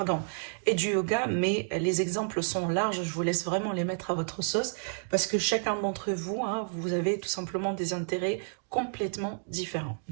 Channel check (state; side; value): silent; left; digital silence